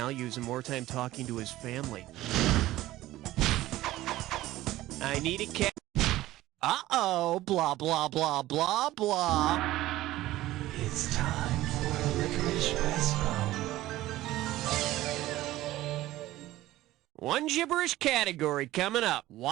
and more time talking to his family. I need a cat. Uh-oh, blah, blah, blah, blah, blah. It's time for a licorice restaurant. One gibberish category coming up.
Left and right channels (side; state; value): left; quieter; 16.0 dB